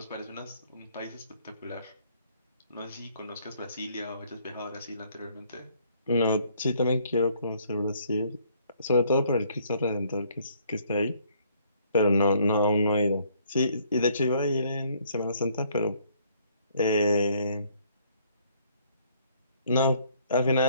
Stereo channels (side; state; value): both; inverted; correlation -0.64